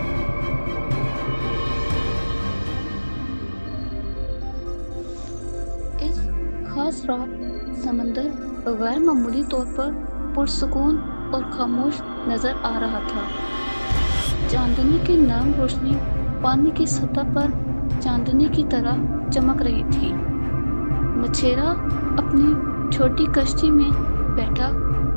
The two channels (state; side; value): inverted; both; correlation -1.00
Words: اس خاص رات سمندر غیر معمولی طور پر پرسکون اور خاموش نظر آ رہا تھا۔ چاندنی کی نرم روشنی پانی کی سطح پر چاندنی کی طرح چمک رہی تھی۔ مچھیرا اپنی چھوٹی کشتی میں بیٹھا